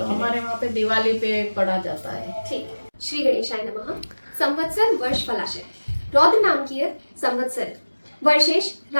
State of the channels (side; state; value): both; inverted; correlation -1.00